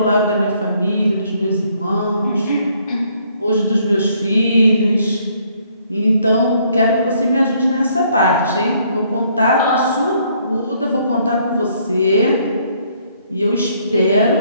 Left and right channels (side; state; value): both; inverted; correlation -0.67